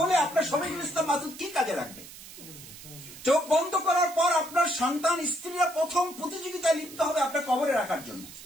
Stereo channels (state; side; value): noise; right; hiss, 16 dB below the sound